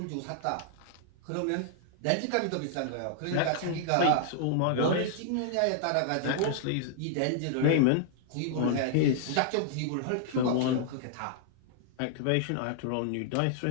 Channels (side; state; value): both; different; correlation -0.01